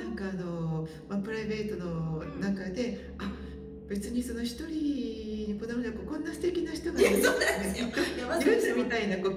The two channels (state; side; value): identical; both; correlation 1.00